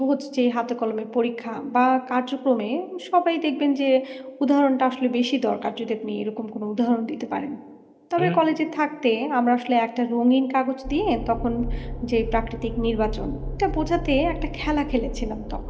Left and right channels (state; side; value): identical; both; correlation 1.00